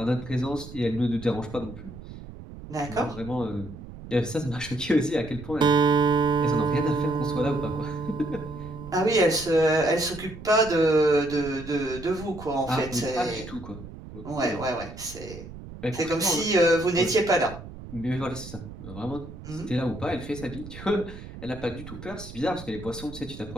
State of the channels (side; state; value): right; noise; rumble, 14 dB below the sound